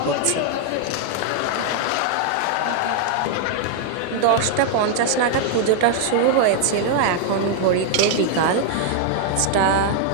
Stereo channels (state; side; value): different; both; correlation 0.00